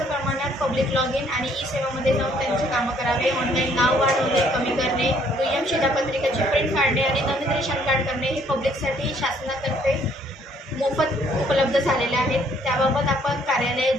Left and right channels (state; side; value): normal; both; correlation 0.64